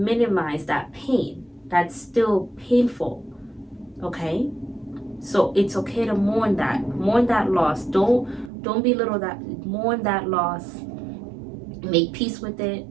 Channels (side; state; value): left; drops out; at 8.5 s